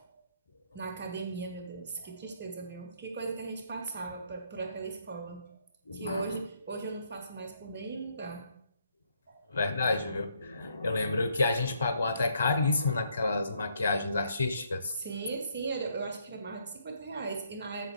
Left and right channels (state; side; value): inverted; both; correlation -0.70